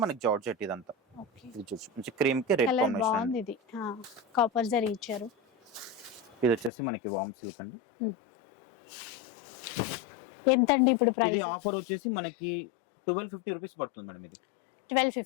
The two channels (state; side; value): drops out; right; at 6.7 s